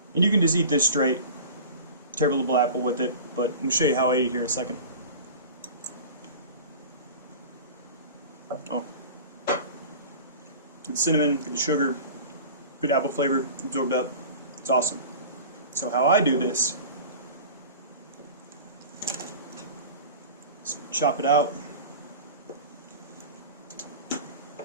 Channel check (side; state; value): both; inverted; correlation -0.37